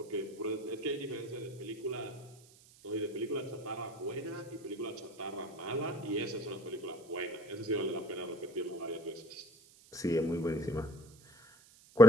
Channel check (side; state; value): right; noise; hiss, 24 dB below the sound